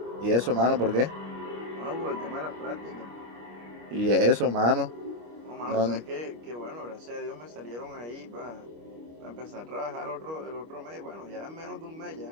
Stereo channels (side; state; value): left; late; 25 ms